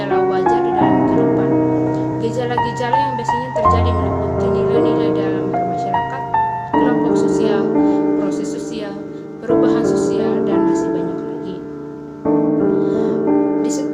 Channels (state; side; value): identical; both; correlation 1.00